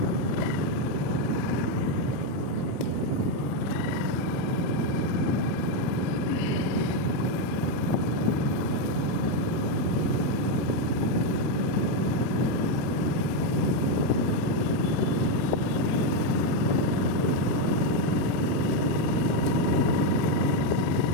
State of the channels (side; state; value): both; normal; correlation 0.04